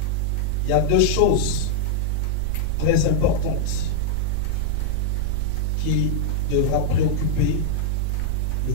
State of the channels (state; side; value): different; both; correlation -0.01